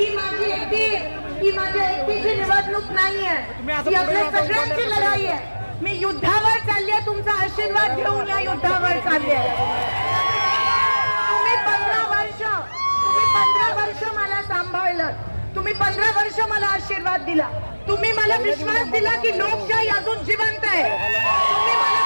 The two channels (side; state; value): both; inverted; correlation -1.00